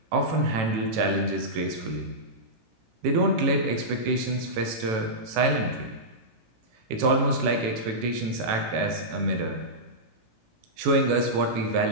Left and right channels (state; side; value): late; left; 18 ms